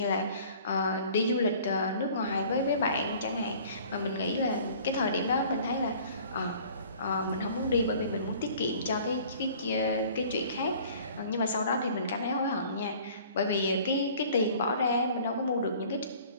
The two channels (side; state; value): both; inverted; correlation -0.50